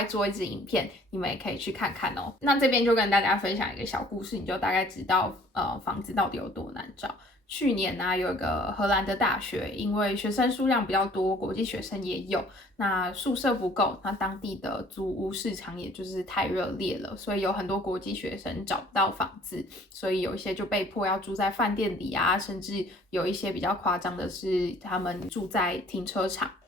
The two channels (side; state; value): both; normal; correlation 0.55